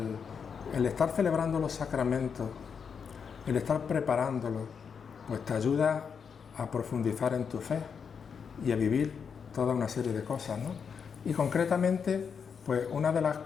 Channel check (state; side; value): quieter; right; 6.5 dB